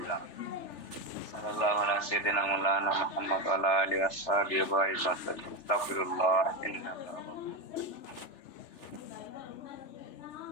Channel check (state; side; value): late; right; 3.4 ms